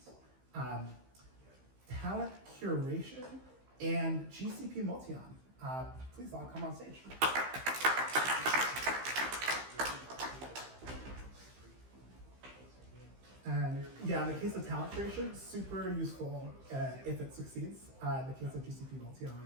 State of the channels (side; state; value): left; late; 15 ms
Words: Talent curation and GCP Multion. Please all come on stage. And in the case of talent curation, super useful if it succeeds. In the case of GCP